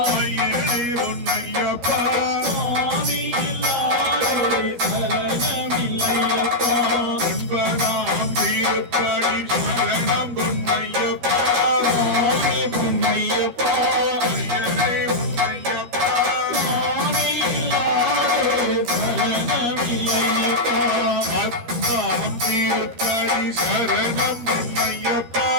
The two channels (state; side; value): late; left; 13 ms